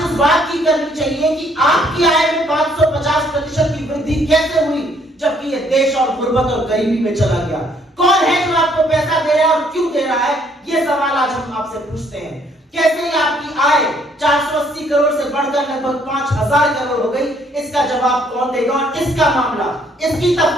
इस बात की करनी चाहिए कि आपकी आय में 550% की वृद्धि कैसे हुई, जबकि यह देश और गुर्बत और गरीबी में चला गया। कौन है जो आपको पैसा दे रहा है और क्यों दे रहा है, यह सवाल आज हम आपसे पूछते हैं। कैसे ही आपकी आय 480 करोड़ से बढ़कर लगभग 5000 करोड़ हो गई, इसका जवाब कौन देगा? और इसका मामला, इसकी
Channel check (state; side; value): normal; both; correlation 0.66